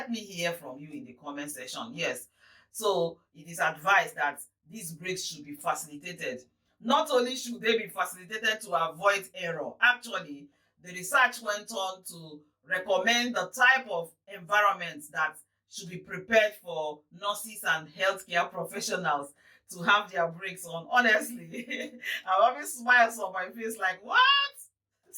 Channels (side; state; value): both; identical; correlation 1.00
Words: me hear from you in the comment section. Yes, so it is advised that these breaks should be facilitated. Not only should they be facilitated to avoid error, actually the research went on to recommend the type of environment that should be prepared for nurses and healthcare professionals to have their breaks on. Honestly, I always smiles on my face like, what?